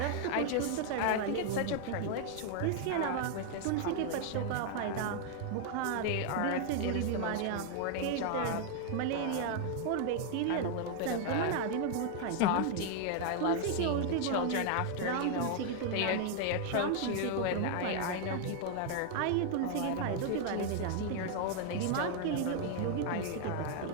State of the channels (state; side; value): different; both; correlation 0.00